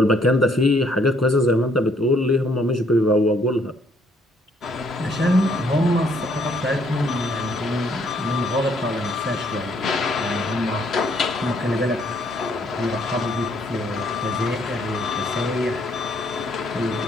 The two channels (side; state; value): both; normal; correlation 0.67